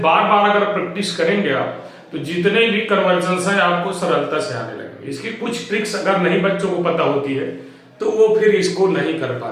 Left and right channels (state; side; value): identical; both; correlation 1.00